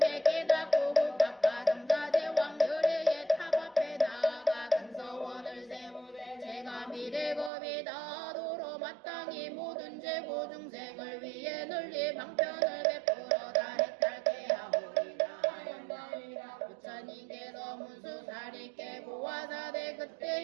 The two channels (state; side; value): drops out; left; at 7.5 s